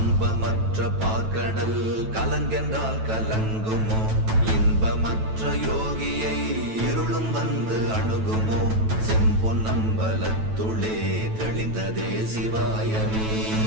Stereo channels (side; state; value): left; late; 9.2 ms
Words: பார்க்கடல் கலங்கென்றால் கலங்குமோ? இன்பமற்ற யோகியை இருளும் வந்து அணுகுமோ? செம்பொன்னம்பலத்துளே தெளிந்ததே சிவாயமே.